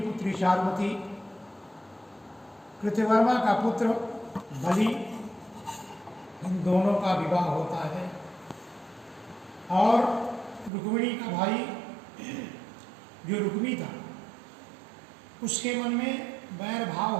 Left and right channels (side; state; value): left; drops out; at 10.7 s